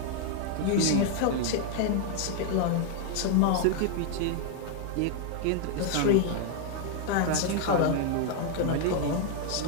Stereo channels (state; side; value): different; both; correlation 0.00